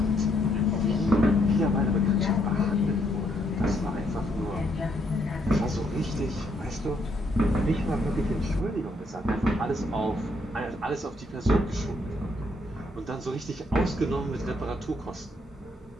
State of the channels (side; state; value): both; normal; correlation 0.72